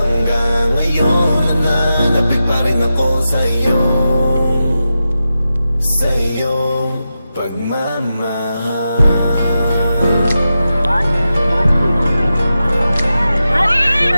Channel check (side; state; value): both; inverted; correlation -0.90